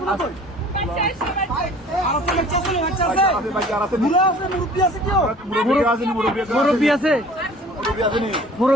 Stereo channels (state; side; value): normal; both; correlation 0.48